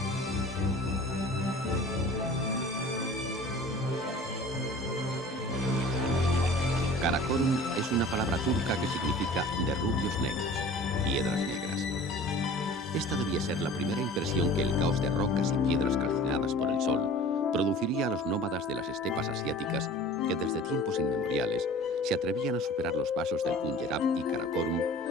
Karakorum es una palabra turca que significa de rubios negros, piedras negras. Esta debía ser la primera impresión que el caos de rocas y piedras calcinadas por el sol produciría a los nómadas de las estepas asiáticas que desde tiempos inmemoriales se atrevían a superar los pasos del Punjab y Karakorum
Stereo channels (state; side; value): normal; both; correlation 0.43